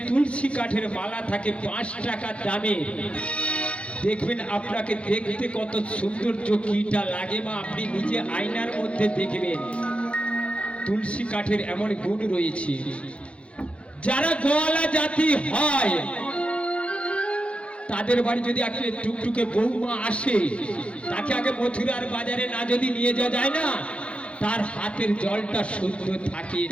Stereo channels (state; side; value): late; right; 0.060 ms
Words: তুলসী কাঠের মালা থাকে 5 টাকা দামে, দেখবেন আপনাকে দেখতে কত সৌন্দর্য কিটা লাগে মা। আপনি নিজে আয়নার মধ্যে দেখবেন তুলসী কাঠের এমন গুণ রয়েছে। যারা গোয়ালা জাতি হয় তাদের বাড়ি যদি একটা টুকটুকে বৌমা আসে, তাকে আগে মথুরার বাজারে না যদি নিয়ে যাওয়া যায় না, তার হাতের জলটা শুদ্ধ থাকে